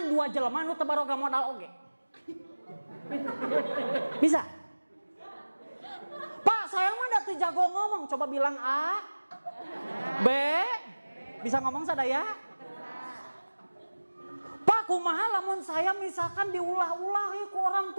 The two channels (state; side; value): inverted; both; correlation -1.00